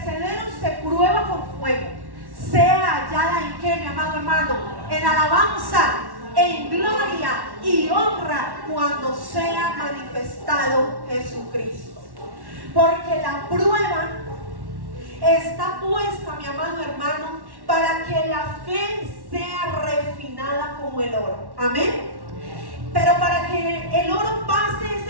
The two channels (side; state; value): left; late; 1.1 ms